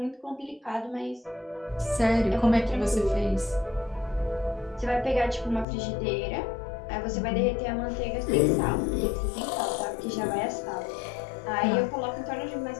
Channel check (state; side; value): drops out; right; at 5.7 s